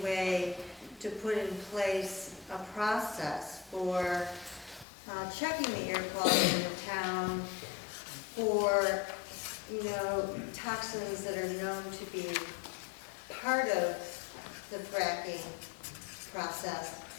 way to put in place a process for checking the air quality in the town for, toxins that are known to be part of the fracking process,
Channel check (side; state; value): right; drops out; at 4.9 s